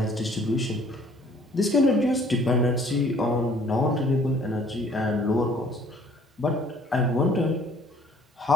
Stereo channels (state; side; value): normal; both; correlation 0.57